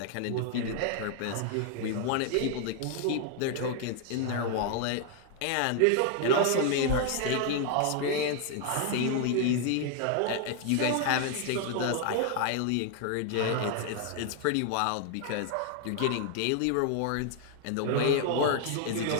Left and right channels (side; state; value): both; different; correlation 0.00